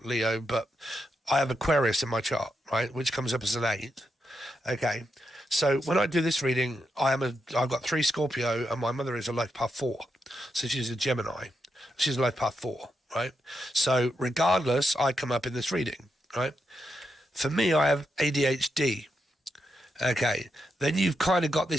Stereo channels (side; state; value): both; normal; correlation 0.84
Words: Leo, but I have Aquarius in my chart, right, which comes up as an 8. Okay. So when I do this reading, I've got 3 Scorpio and my mother is a life path 4. So she's a Gemini. She's a life path 4, right? So regardless, I come up in this reading, right? For me, I have ADHD. Okay. Then you've kind of got